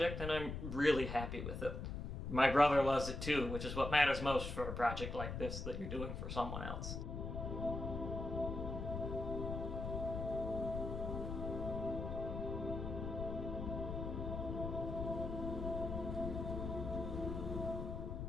and I'm really happy with it. My brother loves it too, which is what matters most for a project like this that you're doing for someone else.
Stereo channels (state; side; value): noise; left; rumble, 4 dB below the sound